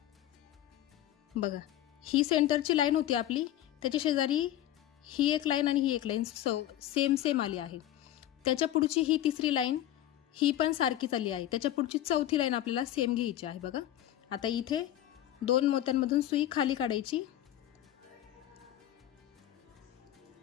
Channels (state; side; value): quieter; right; 12.8 dB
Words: बघा ही सेंटरची लाईन होती आपली, त्याच्या शेजारी ही एक लाईन आणि ही एक लाईन सेम आली आहे। त्याच्या पुढची ही तिसरी लाईन ही पण सारखीच आली आहे। त्याच्या पुढची चौथी लाईन आपल्याला सेम घ्यायची आहे। बघा आता इथे 2 मोत्यांमधून सुई खाली काढायची